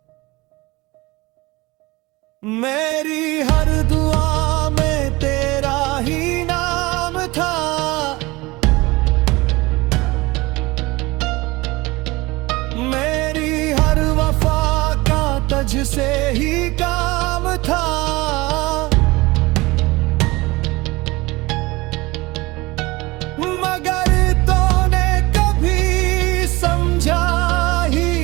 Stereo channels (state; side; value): quieter; left; 22.0 dB